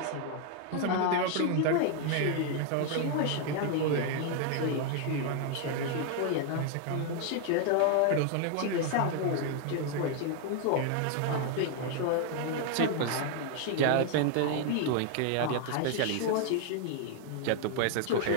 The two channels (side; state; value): both; different; correlation 0.00